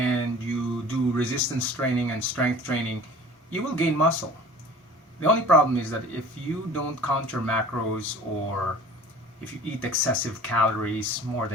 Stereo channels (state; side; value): normal; both; correlation 0.44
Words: you do resistance training and strength training, you will gain muscle. The only problem is that if you don't count your macros, or if you eat excessive calories more